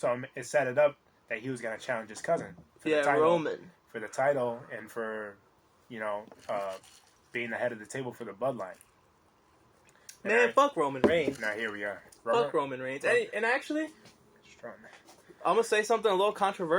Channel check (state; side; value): identical; both; correlation 1.00